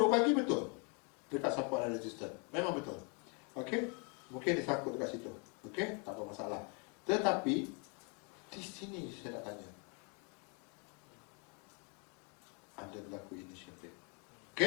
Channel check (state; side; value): quieter; right; 34.3 dB